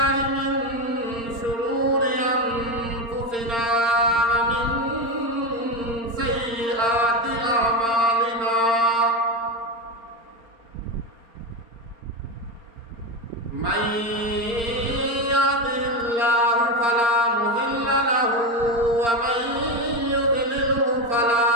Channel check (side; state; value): left; late; 4.4 ms